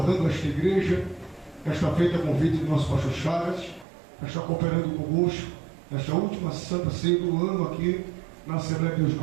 a esta igreja, esta feita a convite do nosso pastor Chagas, estar cooperando conosco nesta última Santa Ceia do ano aqui na Assembleia de Deus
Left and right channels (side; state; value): left; drops out; at 3.9 s